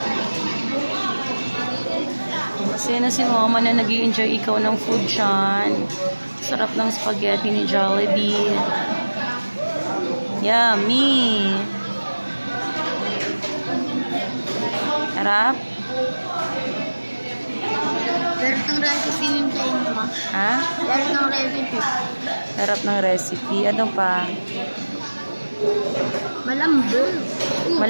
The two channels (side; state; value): both; inverted; correlation -1.00